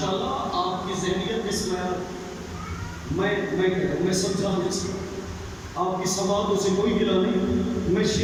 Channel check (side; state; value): both; identical; correlation 1.00